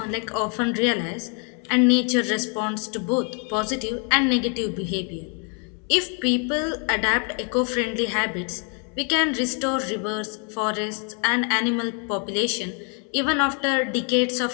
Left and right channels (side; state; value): right; quieter; 38.5 dB